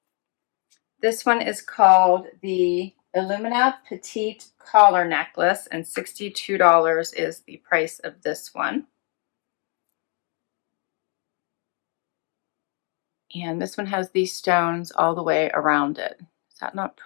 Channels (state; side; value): quieter; right; 37.6 dB